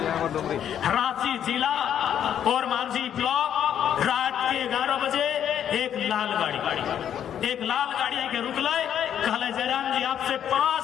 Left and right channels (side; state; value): right; quieter; 9.6 dB